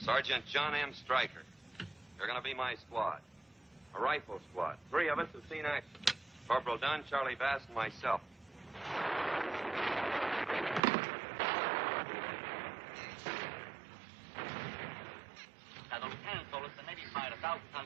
John M. Stryker. You're going to be my squad. A rifle squad. 3 of us have seen action. Corporal Dunn, Charlie Bass, and myself.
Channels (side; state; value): left; drops out; at 10.8 s